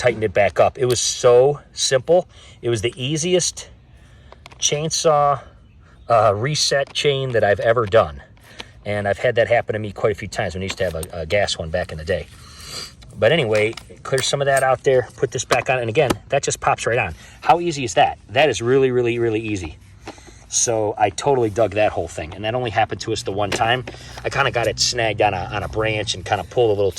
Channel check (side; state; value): both; identical; correlation 1.00